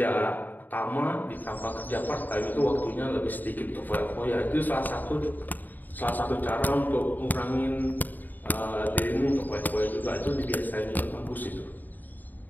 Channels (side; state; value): right; late; 0.087 ms